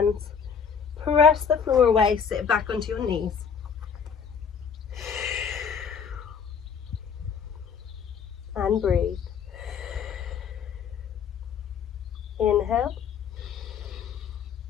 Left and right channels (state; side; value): quieter; right; 6.7 dB